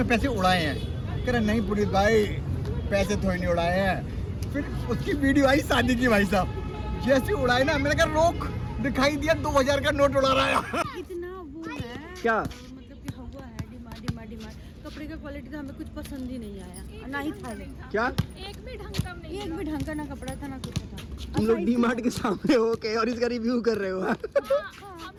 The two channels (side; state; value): both; identical; correlation 1.00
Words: पैसे उड़ाए हैं? कह रहा नहीं पुनीत भाई पैसे थोड़ी नहीं उड़ाए हैं। फिर उसकी वीडियो आई शादी की, भाई साहब जैसे उड़ाए ना, मैंने कहा रोक, दिखाई दिया 2000 का नोट उड़ा रहा है। इतना वो है क्या मतलब कि हुआ है डिमांड। कपड़े का क्वालिटी तो हमें कुछ पसंद ही नहीं आया, ना ही था क्या एक भी ढंग का ना कपड़ा था ना कुछ था। तुम लोग डी-मार्ट के सामने हो के और इसका रिव्यू कर रहे हो?